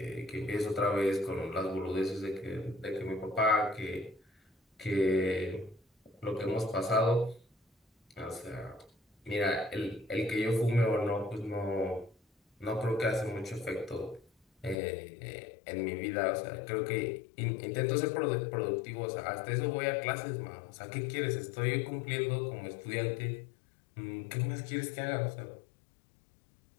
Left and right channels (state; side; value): drops out; right; at 14.8 s